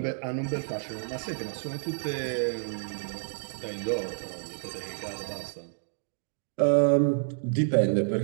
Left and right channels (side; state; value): left; silent; digital silence